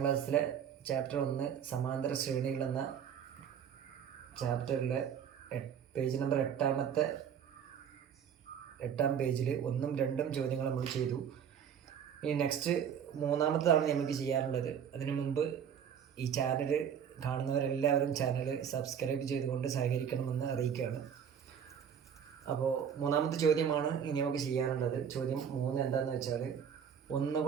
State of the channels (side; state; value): left; quieter; 8.1 dB